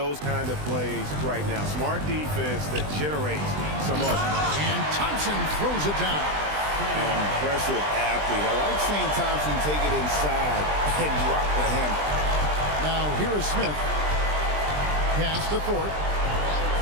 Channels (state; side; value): late; left; 20 ms